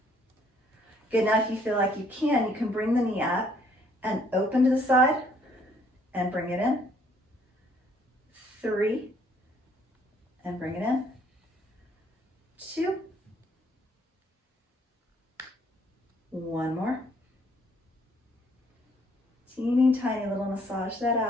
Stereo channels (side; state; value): both; normal; correlation 0.65